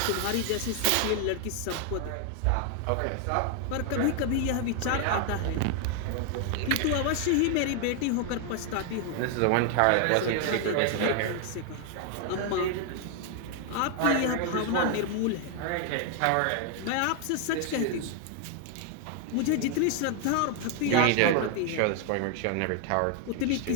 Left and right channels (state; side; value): different; both; correlation 0.00